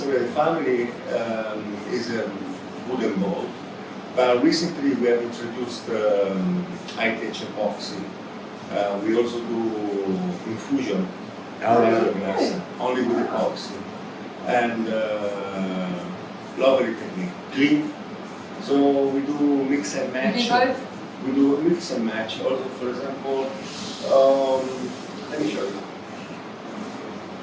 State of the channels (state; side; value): identical; both; correlation 1.00